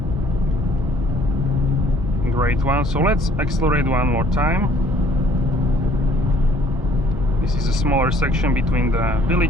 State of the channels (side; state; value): both; normal; correlation 0.58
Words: great one. So let's accelerate one more time. This is a smaller section between the